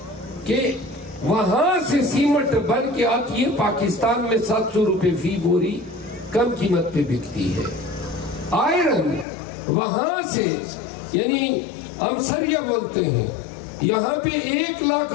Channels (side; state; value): right; drops out; at 9.2 s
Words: کہ وہاں سے سیمنٹ بن کے آتی ہے، پاکستان میں 700 روپے فی بوری کم قیمت پہ بکتی ہے۔ آئرن وہاں سے، یعنی ہم سریا بولتے ہیں، یہاں پہ 1 لاکھ